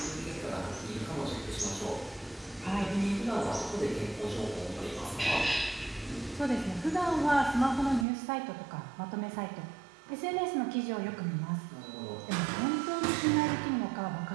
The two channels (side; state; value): left; drops out; at 8.1 s